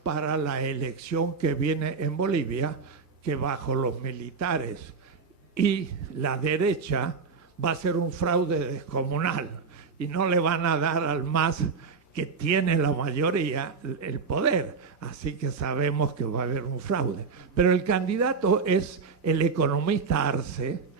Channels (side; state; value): left; quieter; 5.1 dB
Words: para la elección que viene en Bolivia, que bajo los militares y la derecha va a ser un fraude descomunal y no le van a dar al MAS, que tiene la mayoría, el poder. Así que sabemos que va a haber un fraude. Pero el candidato es el economista Arce,